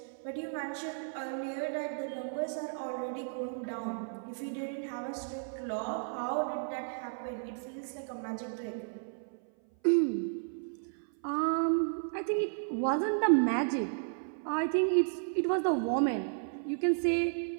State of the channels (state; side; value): silent; left; 55 dB below the other